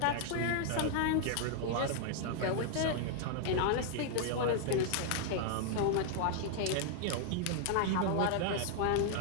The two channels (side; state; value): both; different; correlation 0.00